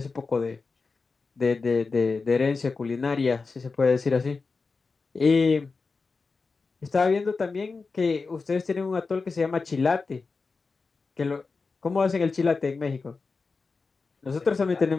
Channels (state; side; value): quieter; right; 4.4 dB